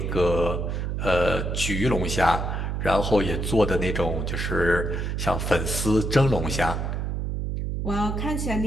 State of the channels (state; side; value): noise; right; hum, 2 dB below the sound